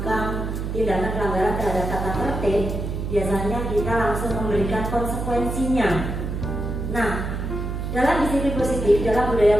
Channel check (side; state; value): right; noise; hum, 4 dB below the sound